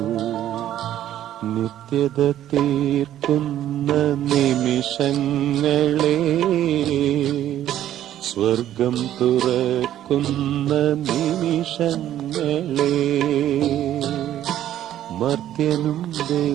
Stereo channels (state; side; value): quieter; left; 12.0 dB